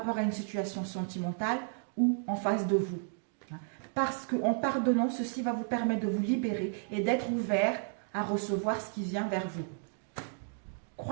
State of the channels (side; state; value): left; silent; 56 dB below the other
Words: à une situation sentimentale ou en face de vous. Parce qu'en pardonnant, ceci va vous permettre de vous libérer et d'être ouvert à recevoir ce qui vient vers vous.